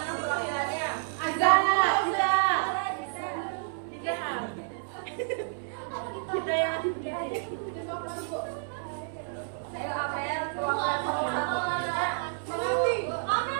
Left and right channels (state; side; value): silent; left; 58 dB below the other